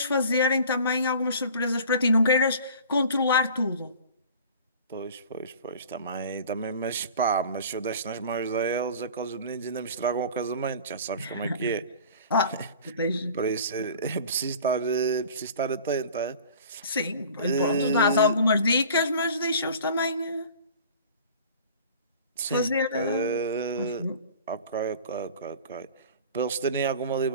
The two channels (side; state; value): both; inverted; correlation -0.43